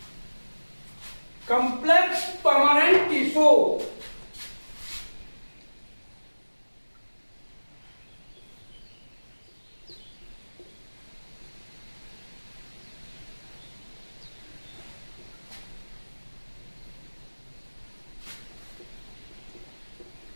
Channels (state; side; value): inverted; both; correlation -1.00